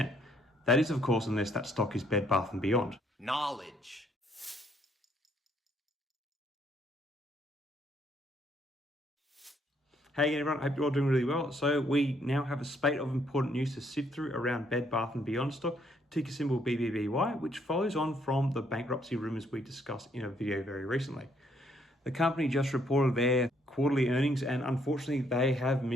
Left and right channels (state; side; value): normal; both; correlation 0.69